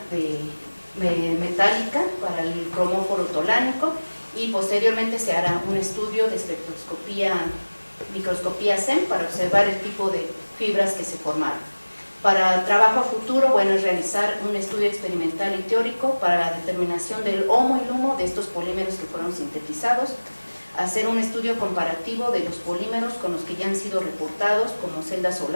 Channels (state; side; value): inverted; both; correlation -1.00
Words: metálica para el cromóforo tolánico, y posteriormente se hará un estudio de microscopía SEM para observar el tipo de fibras que se formaron. Para trabajo a futuro, bueno, es realizar un estudio experimental y teórico para la determinación del HOMO y LUMO de estos polímeros que fueron sintetizados, hacer un estudio comparativo de los polímeros con los que ya han sido reportados como celdas